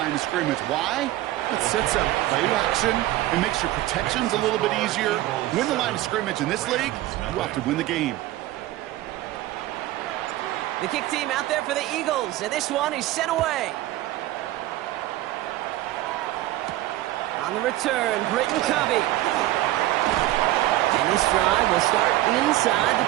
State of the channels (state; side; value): quieter; left; 15.9 dB